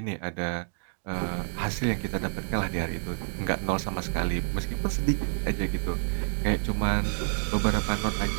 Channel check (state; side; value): silent; left; digital silence